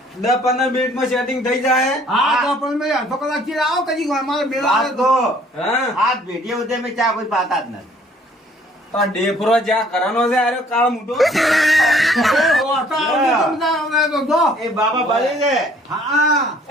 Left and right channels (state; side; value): normal; both; correlation 0.59